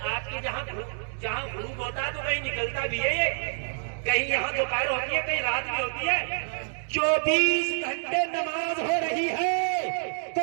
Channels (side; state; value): left; silent; digital silence